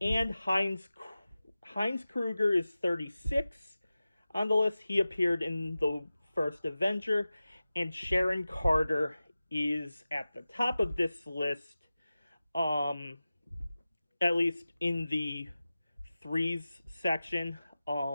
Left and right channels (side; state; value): both; inverted; correlation -0.96